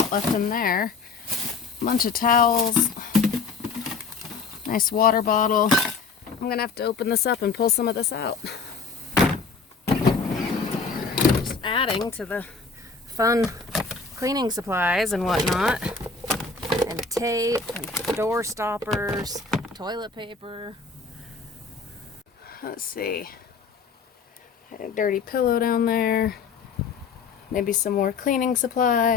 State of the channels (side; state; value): right; quieter; 4.8 dB